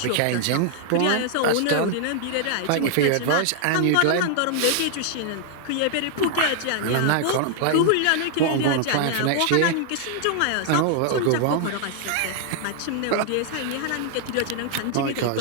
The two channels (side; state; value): both; different; correlation 0.00